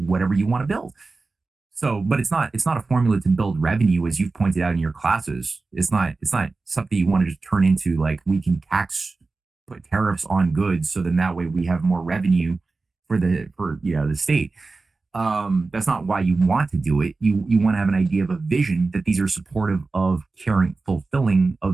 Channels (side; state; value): left; quieter; 3.8 dB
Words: you want to build. So, but it's not a formula to build revenue, as you've pointed out in your classes. It's not something you want to just turn into, like, we can put tariffs on goods, so then that way we have more revenue for the state. That's not why you want to do it. You want to have an idea of a vision, that these are supportive of caring, fulfilling a